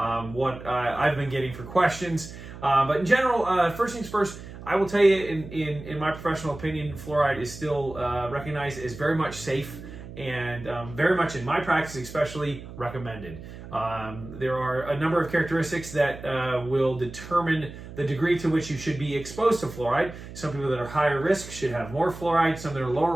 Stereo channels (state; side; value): noise; right; hum, 13 dB below the sound